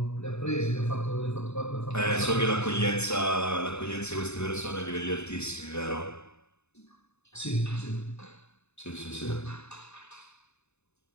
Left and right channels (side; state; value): right; late; 0.81 ms